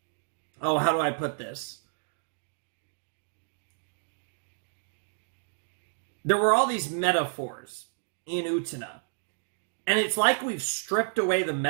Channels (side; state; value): left; silent; digital silence